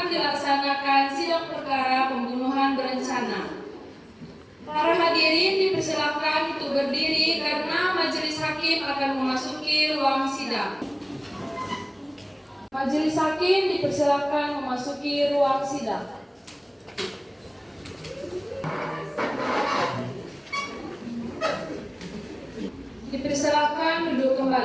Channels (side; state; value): both; identical; correlation 1.00